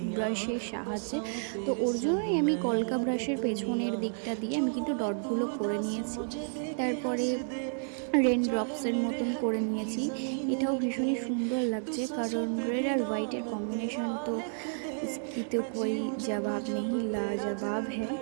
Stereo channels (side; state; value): left; silent; 57 dB below the other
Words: ব্রাশের সাহায্যে, তো ওর জন্যই আমি কলকা ব্রাশের পেছনের দিকটা দিয়ে আমি কিন্তু ডটগুলো করে নিয়েছি। তারপরে রেন ড্রপসের মতন করে নিয়েছি। এটাও ভীষণই সুন্দর লাগছে, কারণ রেড আর হোয়াইটের কম্বিনেশন তো इसकी तो कोई जवाब नहीं, लाजवाब है।